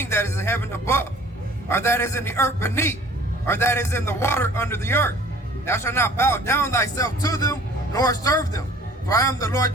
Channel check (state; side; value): normal; both; correlation 0.51